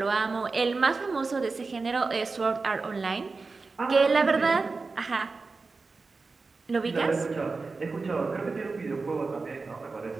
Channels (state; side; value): quieter; left; 4.1 dB